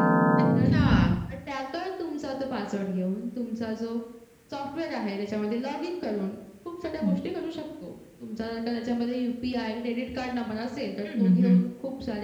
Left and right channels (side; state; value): both; identical; correlation 1.00